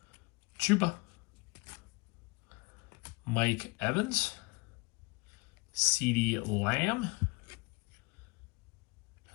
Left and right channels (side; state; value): right; quieter; 27.1 dB